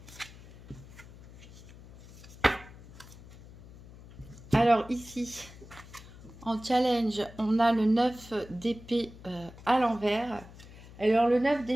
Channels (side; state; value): left; noise; hum, 18 dB below the sound